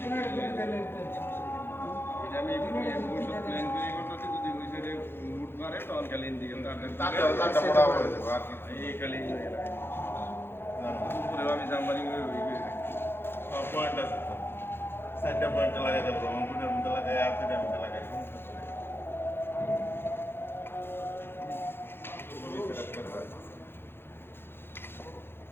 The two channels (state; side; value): late; right; 0.11 ms